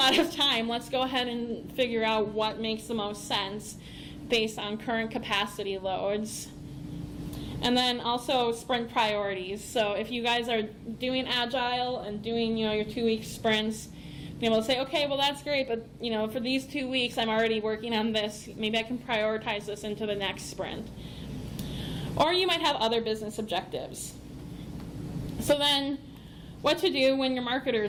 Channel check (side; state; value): both; identical; correlation 1.00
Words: of time. Let's go ahead and figure out what makes the most sense based on current capacity loads. And then also sprint priorities. So if you guys are doing Agile and doing, your 2-week sprints, be able to say, okay, well that's great, but for these 2 weeks I'm already working on this. Maybe I can prioritize this into the next sprint. Or you might have other business objectives. So then, what to do when your